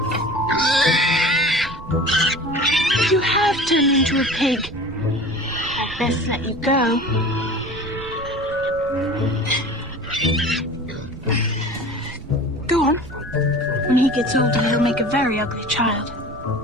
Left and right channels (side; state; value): right; noise; rumble, 15 dB below the sound